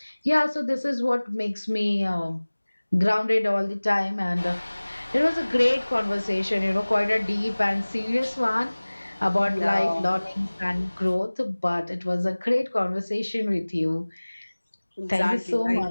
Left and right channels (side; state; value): both; inverted; correlation -1.00